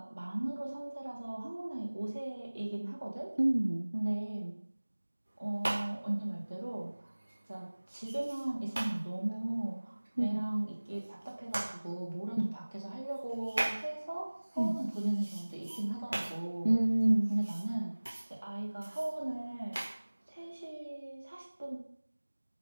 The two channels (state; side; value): inverted; both; correlation -1.00